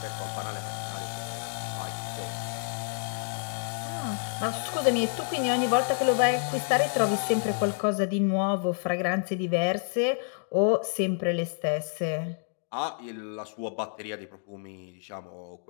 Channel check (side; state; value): right; silent; digital silence